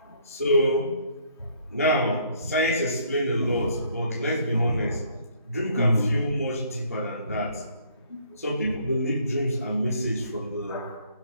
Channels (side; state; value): both; inverted; correlation -0.63